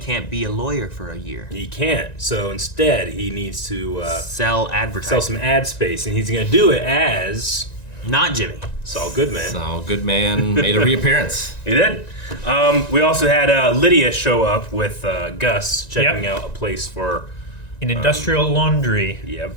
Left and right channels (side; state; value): right; late; 1.9 ms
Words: be a lawyer for a year. he can't. So instead, he needs to Sell advertising. sell some ad space, and he's going to do it as Not Jimmy. Saul Goodman. Saul Goodman made a reappearance. He did. We also had Lydia show up with Gus checking out a place for. An industrial laundry.